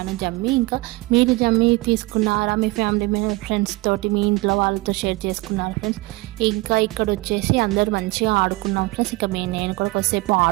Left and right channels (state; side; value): quieter; left; 22.1 dB